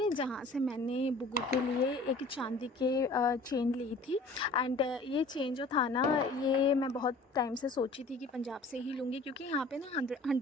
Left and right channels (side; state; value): right; quieter; 3.1 dB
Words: जहाँ से मैंने बुग्गू के लिए एक चांदी के चेन ली थी। एंड ये चेन जो था ना, ये मैं बहुत टाइम से सोची थी कि पंजाब से ही लूँगी, क्योंकि यहाँ पे ना